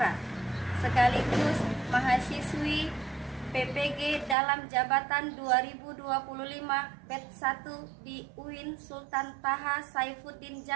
sekaligus mahasiswi PPG dalam jabatan 2025 batch 1 di UIN Sultan Taha Saifuddin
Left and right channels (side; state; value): left; drops out; at 4.4 s